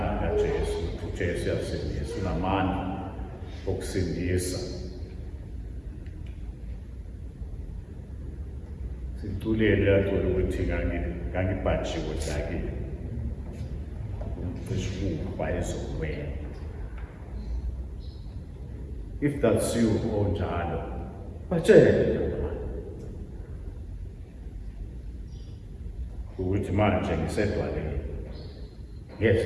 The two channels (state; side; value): identical; both; correlation 1.00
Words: kaJesu, uJesu uyasindisa, unamandla okusindisa. Situlele yacula ukuthi ngangibhajiwe sakile. Umcishuba ezokwena. If that's you, onjalo, batshele ukuthi manje ngisedwaleni.